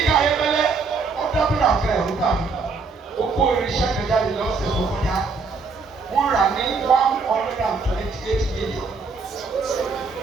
ayébẹ́lẹ́ ó dábìlà fẹ́ ẹ̀rú dàbí ó kó irinṣẹ́ kẹjá lè lọ́sẹ̀ tó kọjá wọ́n rà ní 128 million.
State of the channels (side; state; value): left; quieter; 4.5 dB